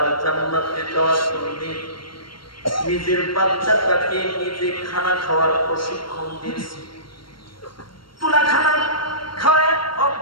জান্নাতে যাওয়ার জন্য নিজের বাচ্চাটাকে নিজে খানা খাওয়ার প্রশিক্ষণ দিয়েছে, তুলা খানা খাওয়ায়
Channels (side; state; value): right; late; 0.73 ms